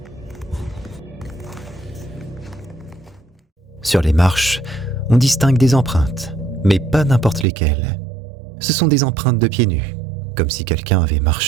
Sur les marches, on distingue des empreintes, mais pas n'importe lesquelles. Ce sont des empreintes de pieds nus, comme si quelqu'un avait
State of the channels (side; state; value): left; drops out; at 7.5 s